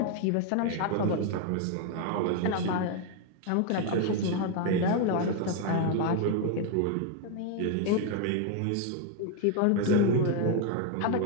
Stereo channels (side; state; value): both; different; correlation 0.01